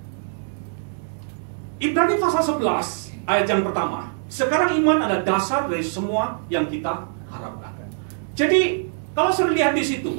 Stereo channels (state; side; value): silent; left; digital silence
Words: Ibrani pasal 11 ayat yang pertama. Sekarang iman adalah dasar dari semua yang kita harapkan. Jadi kalau saudara lihat di